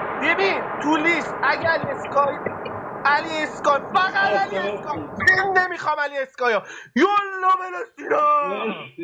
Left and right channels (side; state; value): both; identical; correlation 1.00